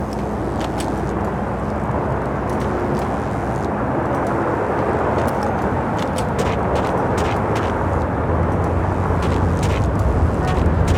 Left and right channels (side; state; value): both; identical; correlation 1.00